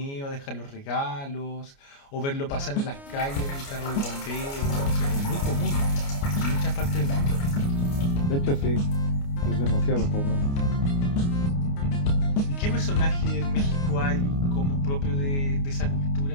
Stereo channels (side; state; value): right; late; 29 ms